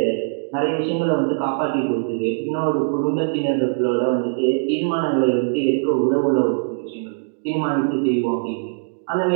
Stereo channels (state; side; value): silent; left; digital silence